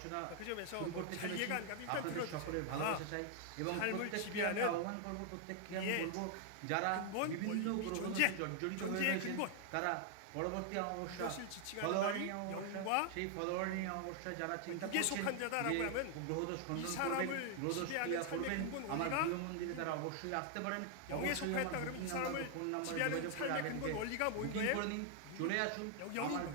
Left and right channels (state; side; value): different; both; correlation 0.00